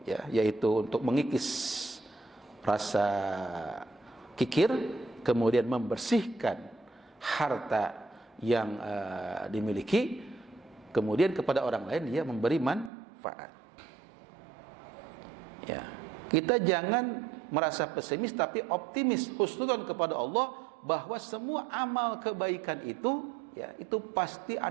ya, yaitu untuk mengikis rasa kikir, kemudian membersihkan harta yang dimiliki, kemudian kepada orang lain dia memberi manfaat. Ya, kita jangan merasa pesimis tapi optimis, husnudzon kepada Allah bahwa semua amal kebaikan itu, ya, itu pasti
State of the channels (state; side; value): drops out; left; at 12.9 s